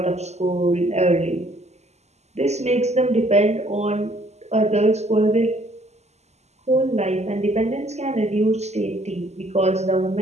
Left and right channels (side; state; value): left; late; 0.32 ms